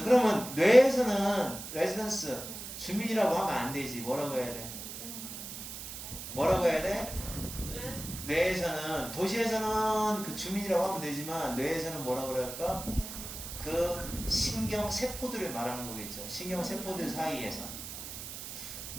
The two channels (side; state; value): right; noise; hiss, 9 dB below the sound